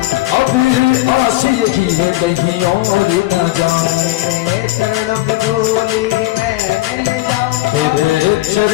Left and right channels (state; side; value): quieter; right; 17.6 dB